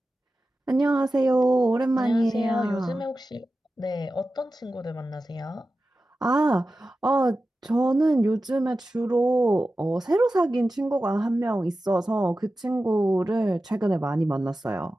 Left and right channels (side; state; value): both; normal; correlation 0.94